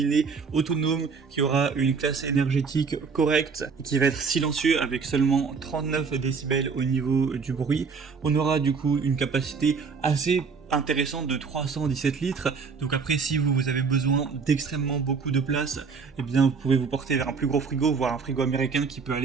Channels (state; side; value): quieter; left; 5.2 dB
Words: autonome qui aura une classe énergétique correcte et qui va être silencieux avec seulement 39 décibels au niveau du bruit. On aura du coup une capacité assez intéressante de 317 litres. Donc après, si vous avez besoin d'extrêmement beaucoup de place, eh bien vous pouvez vous porter vers un plus gros frigo, voire un frigo américain qui peut